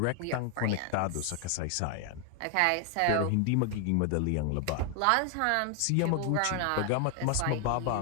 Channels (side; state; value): both; different; correlation 0.00